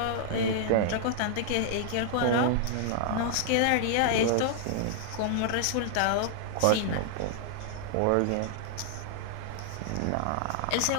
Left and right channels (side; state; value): both; different; correlation -0.01